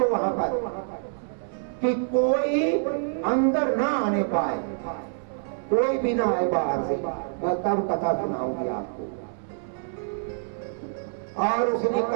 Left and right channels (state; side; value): silent; left; 61 dB below the other